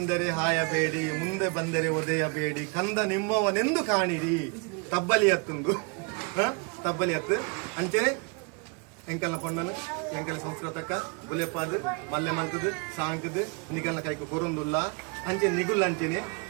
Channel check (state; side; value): quieter; left; 32.5 dB